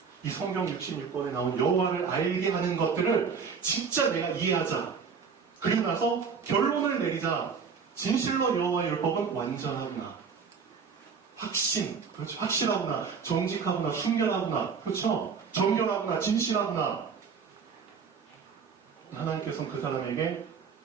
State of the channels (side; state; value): left; quieter; 6.0 dB